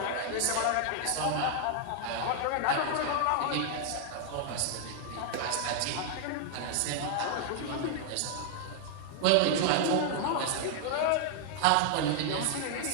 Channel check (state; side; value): different; both; correlation 0.00